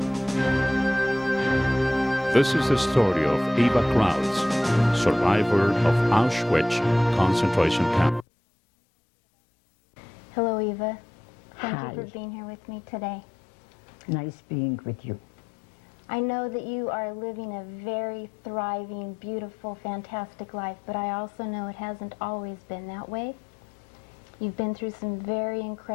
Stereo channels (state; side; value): drops out; right; at 8.2 s